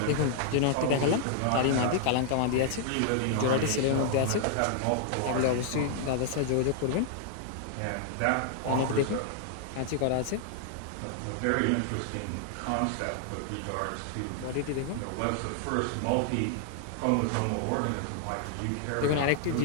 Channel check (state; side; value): different; both; correlation 0.00